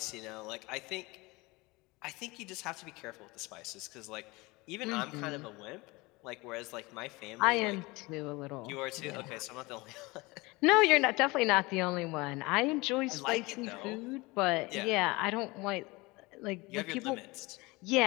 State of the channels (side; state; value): right; quieter; 23.4 dB